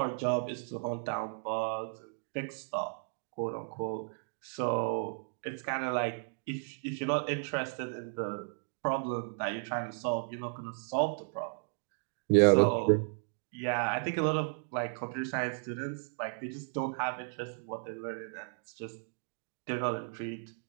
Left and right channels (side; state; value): left; silent; digital silence